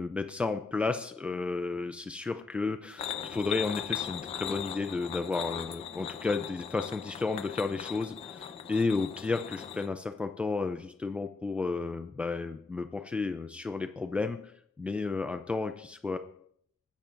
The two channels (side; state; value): right; quieter; 3.9 dB